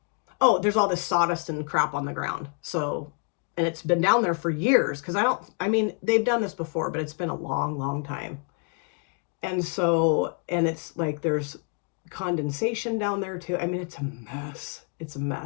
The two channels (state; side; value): quieter; right; 39.2 dB